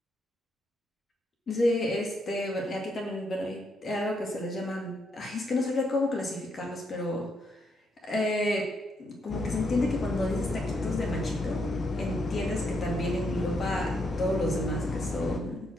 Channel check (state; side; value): normal; both; correlation 0.77